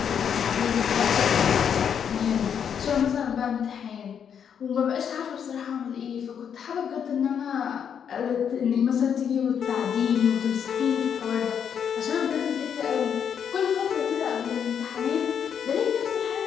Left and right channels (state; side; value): quieter; right; 7.9 dB